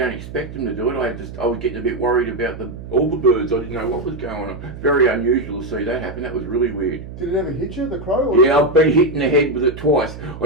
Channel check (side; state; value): right; noise; hum, 12 dB below the sound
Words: expect them to do it. I was getting a bit worried about all the birds. I didn't know what was going on. Very unusual to see that happen. That was really weird. Did it ever hit you, the crow? Yeah, I've been hit in the head with it twice.